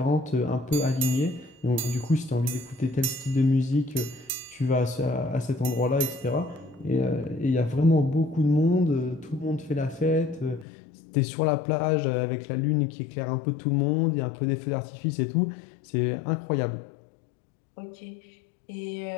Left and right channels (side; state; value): right; drops out; at 10.7 s